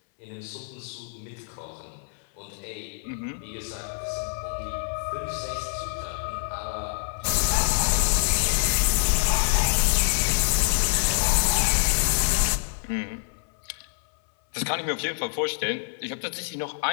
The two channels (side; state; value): right; silent; 61 dB below the other